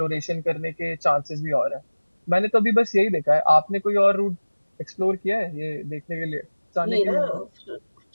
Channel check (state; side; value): inverted; both; correlation -1.00